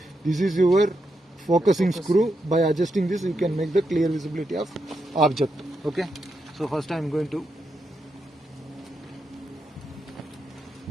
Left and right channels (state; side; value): normal; both; correlation 0.84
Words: This is your focusing screw. By adjusting this, you can make the clear visibility of object. Okay. So first I am going to